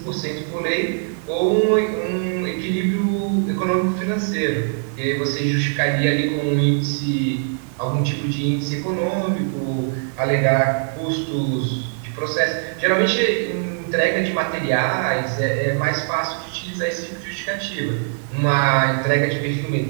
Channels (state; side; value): silent; left; 65 dB below the other